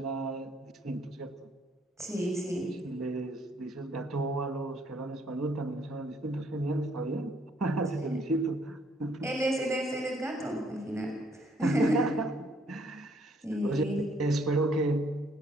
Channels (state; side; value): normal; both; correlation 0.66